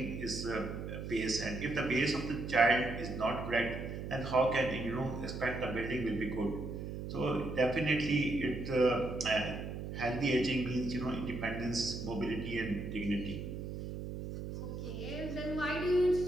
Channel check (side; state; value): right; noise; hum, 6 dB below the sound